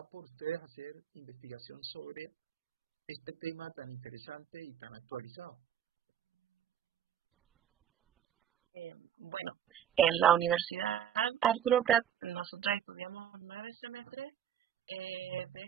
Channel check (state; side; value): quieter; left; 9.8 dB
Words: En la Universidad Arturo Prat, nosotros